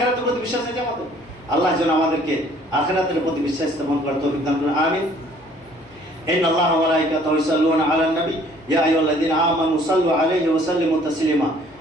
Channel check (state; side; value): noise; left; hum, 29 dB below the sound